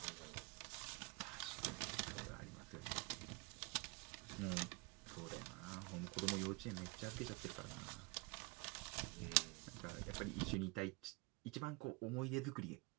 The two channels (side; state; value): left; quieter; 27.1 dB